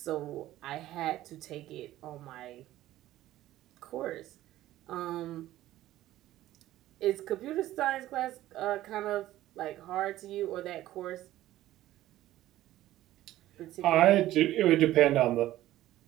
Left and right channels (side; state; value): left; quieter; 14.7 dB